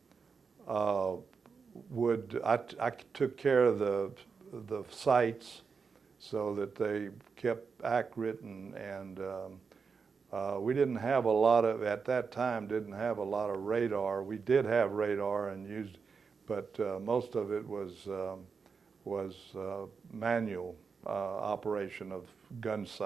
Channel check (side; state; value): left; quieter; 5.5 dB